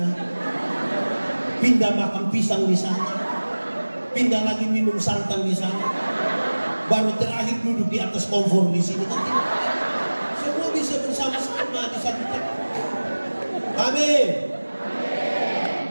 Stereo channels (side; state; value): both; inverted; correlation -1.00